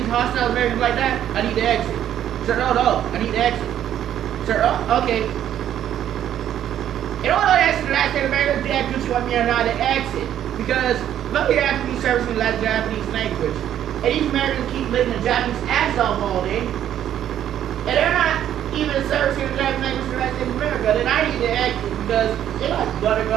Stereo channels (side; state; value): left; quieter; 10.8 dB